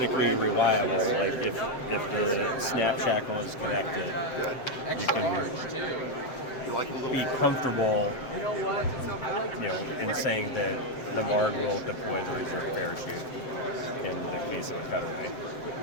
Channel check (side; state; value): right; late; 7.7 ms